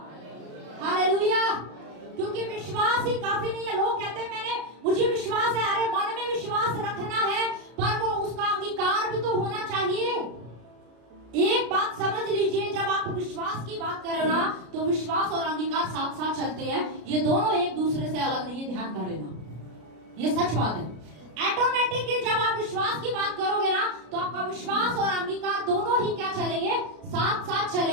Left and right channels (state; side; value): late; left; 33 ms